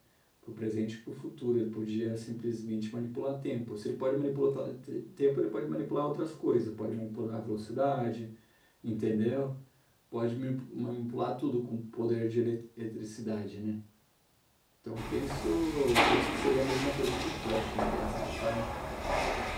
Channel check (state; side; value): identical; both; correlation 1.00